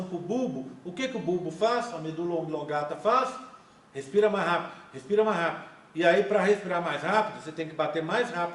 para o bulbo. O que o bulbo faz? A medula oblongata faz? Respira mais rápido, respira mais rápido. E aí, para respirar mais rápido, você tem que bater mais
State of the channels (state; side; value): identical; both; correlation 1.00